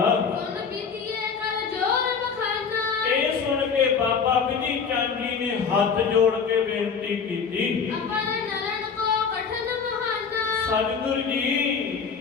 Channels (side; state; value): right; quieter; 5.9 dB